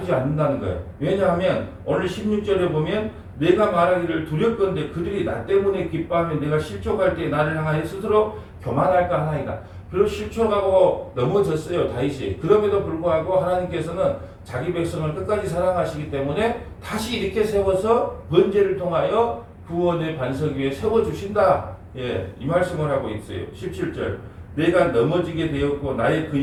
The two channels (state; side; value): identical; both; correlation 1.00